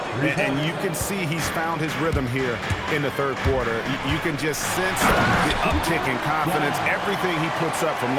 And you can see he's found his rhythm here in the third quarter. You can just sense the uptick in confidence. Everything he puts up from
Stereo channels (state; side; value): identical; both; correlation 1.00